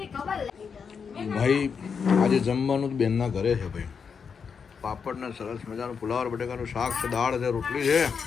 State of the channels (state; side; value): quieter; right; 6.2 dB